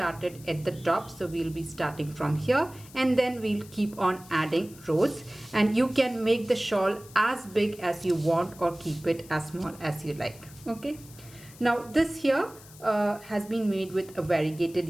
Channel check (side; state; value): left; noise; hiss, 21 dB below the sound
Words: at the top. So we'll be starting from here and then we'll keep on adding rows, and you can make the shawl as big as you want or keep it as small as you like. Okay. Now this here has been made with a variegated